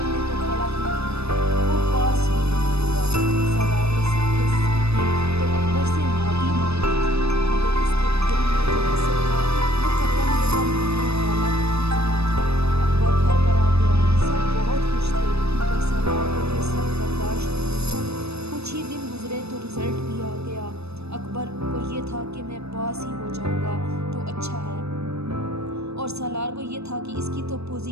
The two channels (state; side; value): late; left; 0.79 ms